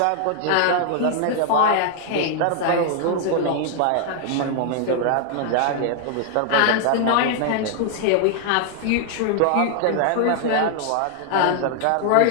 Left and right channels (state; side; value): different; both; correlation 0.00